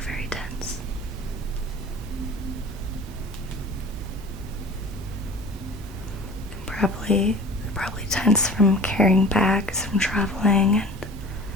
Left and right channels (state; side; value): normal; both; correlation 0.42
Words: very tense. They're probably tense from carrying bags, from traveling, and